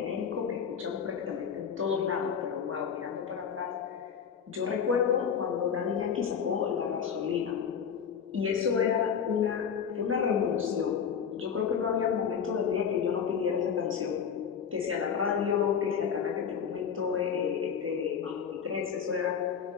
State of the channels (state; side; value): quieter; right; 7.2 dB